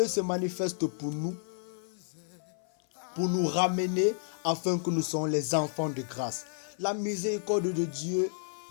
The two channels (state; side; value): silent; right; 57 dB below the other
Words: se manifeste pour nous ramener afin que nous soyons les enfants de grâce. La miséricorde de Dieu